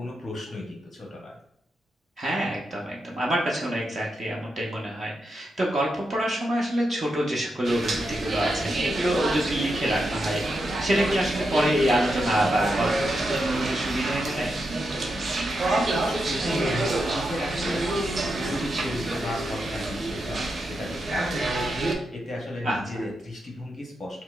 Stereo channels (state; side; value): normal; both; correlation 0.85